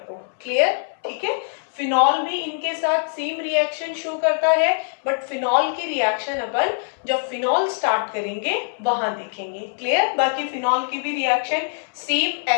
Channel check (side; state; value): right; silent; 64 dB below the other